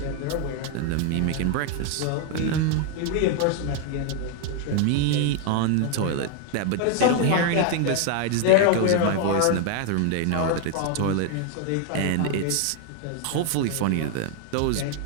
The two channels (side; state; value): both; different; correlation 0.00